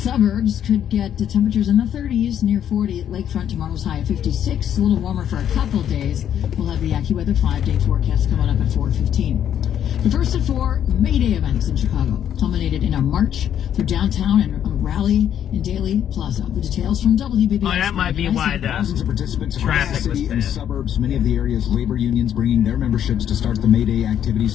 could get the temperatures in the 30s, near 40 at Lakefront. Tomorrow's high of 56. A little warmer for a couple days. We'll have the AccuWeather 5-day forecast coming up at 4:15. The first of 4 May Day events in Chicago culminated in a march through downtown and a rally in Daley Plaza. The details from WBBS. Oh, that might be why Thousands of participants across traffic the was city bad. and suburbs. Many of the area's labor unions bringing their memberships to start the May Day activities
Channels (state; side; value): quieter; right; 9.8 dB